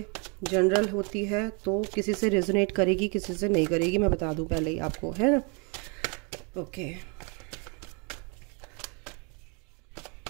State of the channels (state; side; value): quieter; left; 34.0 dB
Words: जनरल होती है तो किसी से रेजोनेट करेगी, किसी से नहीं करेगी, मैं बता दूं पहले ही आपको, है ना। ओके